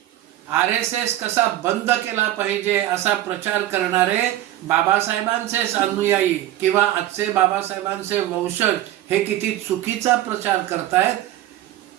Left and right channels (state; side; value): quieter; left; 14.2 dB